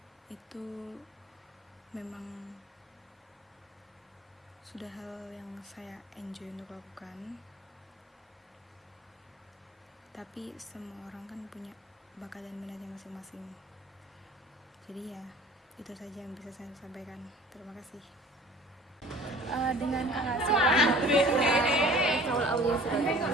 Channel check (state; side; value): normal; both; correlation 0.47